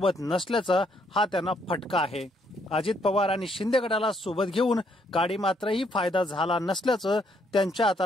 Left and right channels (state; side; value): normal; both; correlation 0.71